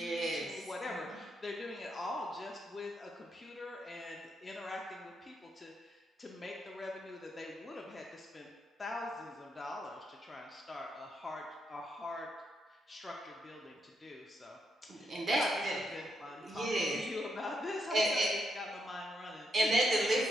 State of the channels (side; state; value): both; normal; correlation 0.80